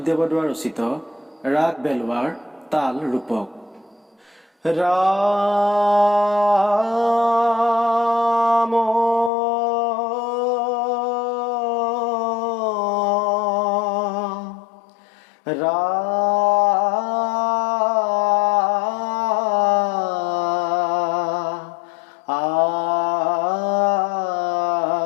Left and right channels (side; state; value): right; drops out; at 9.3 s